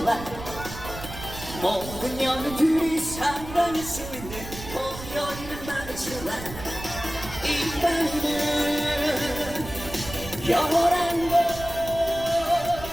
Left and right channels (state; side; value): noise; right; rumble, 12 dB below the sound